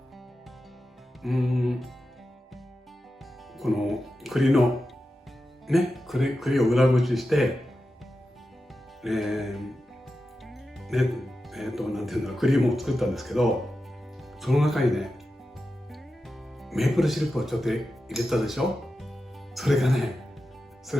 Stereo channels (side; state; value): both; normal; correlation 0.91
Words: この栗のね、栗を裏ごしして、なんていうんだろう、クリームを作ったんですけど、その中にね、メープルシロップをちょっと入れたでしょ。それが効